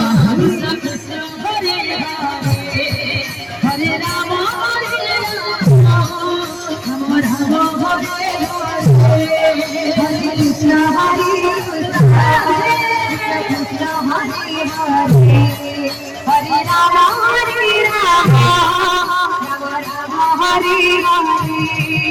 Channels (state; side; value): identical; both; correlation 1.00